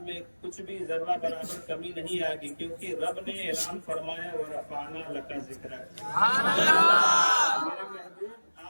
میں کچھ بھی ذرہ برابر کمی نہیں آئے گی، کیونکہ رب نے اعلان فرمایا وَرَفَعْنَا لَكَ ذِكْرَكَ۔ میرے محبوب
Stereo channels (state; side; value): inverted; both; correlation -1.00